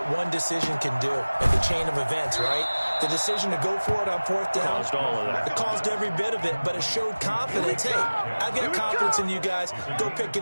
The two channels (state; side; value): inverted; both; correlation -1.00